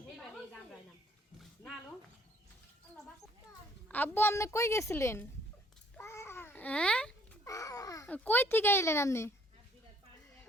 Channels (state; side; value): normal; both; correlation 0.62